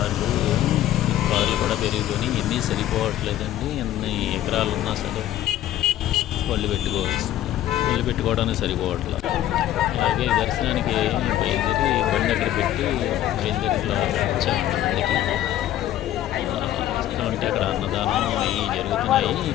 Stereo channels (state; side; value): quieter; right; 13.0 dB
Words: కార్లు కూడా పెరిగిపోయినాయి. ఎన్ని సరిపోవట్లేదండి. ఎన్ని ఎకరాలు ఉన్నా సరే బళ్ళు పెట్టుకోవడానికి సరిపోవట్లేదు. అలాగే దర్శనానికి బయలుదేరి బండి అక్కడ పెట్టి బయలుదేరిలో వచ్చామండి. బండికి వస్తుంటే అక్కడ అన్నదానం అవి జరుగుతున్నాయి.